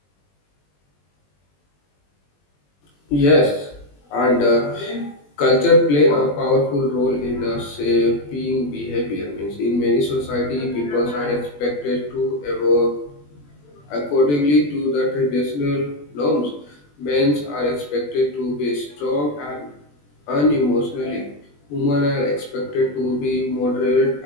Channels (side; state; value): right; late; 21 ms